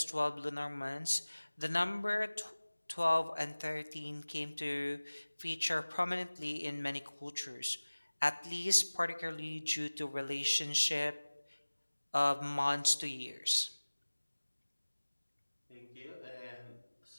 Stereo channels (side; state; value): both; inverted; correlation -1.00